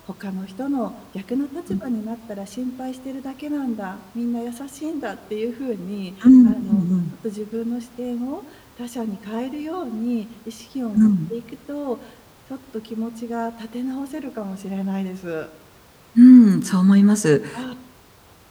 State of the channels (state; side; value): identical; both; correlation 1.00